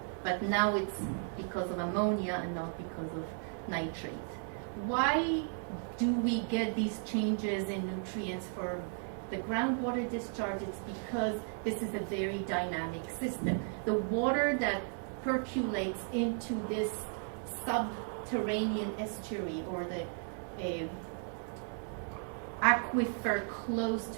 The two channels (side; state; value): left; silent; 54 dB below the other